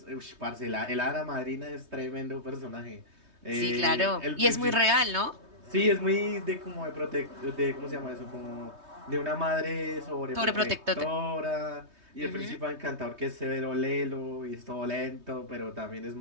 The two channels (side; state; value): left; late; 3.2 ms